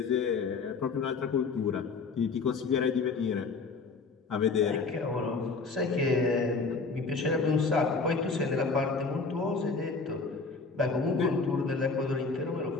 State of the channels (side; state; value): right; quieter; 4.4 dB